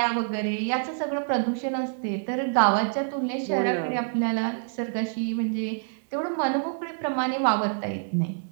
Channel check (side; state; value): left; silent; digital silence